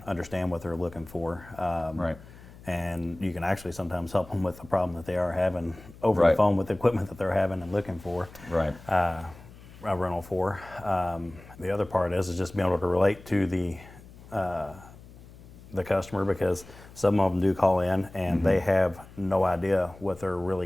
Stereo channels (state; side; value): noise; left; hum, 20 dB below the sound